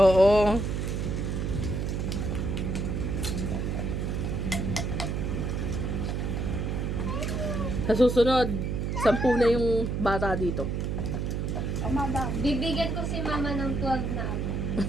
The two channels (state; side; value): noise; right; hum, 1 dB below the sound